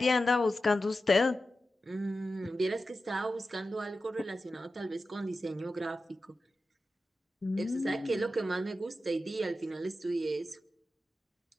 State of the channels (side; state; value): both; normal; correlation 0.92